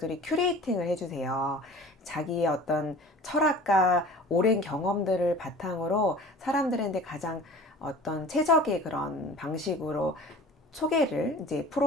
큐레이팅을 해주세요. 자기의 어떤 철학과 오랜 경험들을 바탕으로 사람들한테 가장 어떤 최적의 그런 방식으로 소개를 이제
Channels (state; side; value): normal; both; correlation 0.43